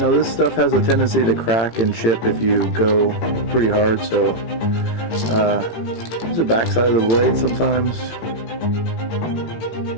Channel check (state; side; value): late; right; 18 ms